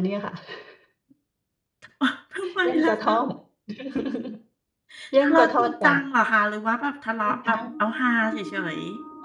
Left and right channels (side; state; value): both; identical; correlation 1.00